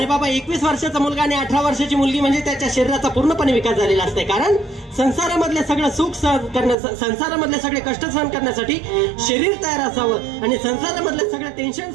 बाबा, 21 वर्षाचा मुलगा आणि 18 वर्षाची मुलगी म्हणजे त्याच्या शरीराचा पूर्णपणे विकास झालेला असते. कारण संसारामधले सगळं सुख सहन करण्यासाठी, संसारामधले सगळे कष्ट सहन करण्यासाठी शरीर तयार असावं आणि संसारामधले सगळे टेन्शन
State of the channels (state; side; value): drops out; left; at 6.8 s